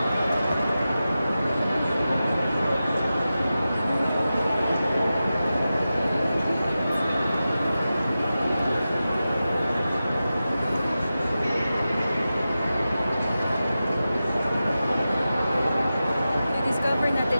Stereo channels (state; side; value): inverted; both; correlation -0.93